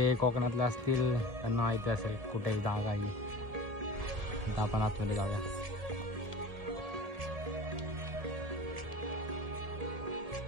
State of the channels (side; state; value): left; late; 1.7 ms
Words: कोकणातले असतील त्यांना माहिती असेल कुठेही जागा आहे। आता आपण आतमध्ये जाऊया।